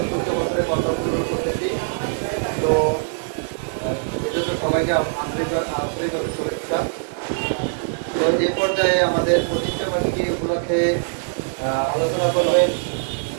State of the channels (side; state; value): left; silent; 64 dB below the other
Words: বছরে পদার্পণ করতেছি। তো এজন্য সবাইকে আন্তরিকভাবে শুভেচ্ছা। তো এই পর্যায়ে আমাদের প্রতিষ্ঠাবার্ষিকী উপলক্ষে আলোচনা করবেন